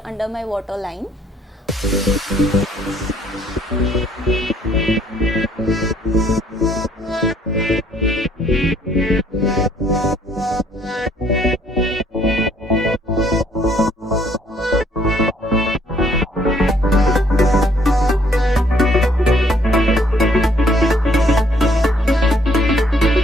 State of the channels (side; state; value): both; normal; correlation 0.65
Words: under my waterline.